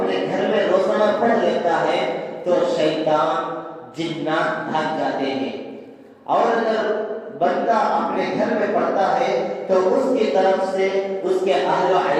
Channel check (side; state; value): both; identical; correlation 1.00